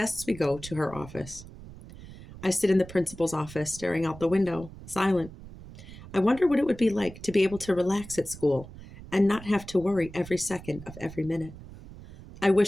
we go to her office. I sit in the principal's office, staring out the window, silent. I wonder what it would be like to be able to relax at school and not have to worry every second of every minute. I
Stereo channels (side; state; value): right; noise; rumble, 16 dB below the sound